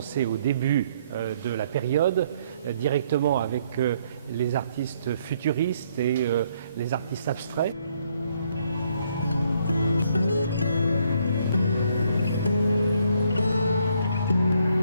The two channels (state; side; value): inverted; both; correlation -0.69